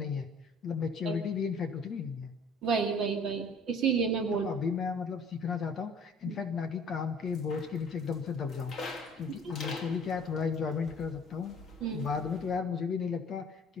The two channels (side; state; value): both; normal; correlation 0.51